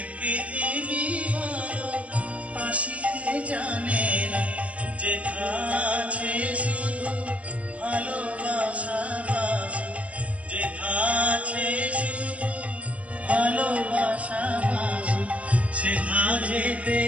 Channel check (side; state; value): left; late; 0.065 ms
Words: পৃথিবী ভালোবাসিতে জানে না যেথা আছে শুধু ভালোবাসা বাসা যেথা আছে শুধু ভালোবাসা বাসা সেথা যেতে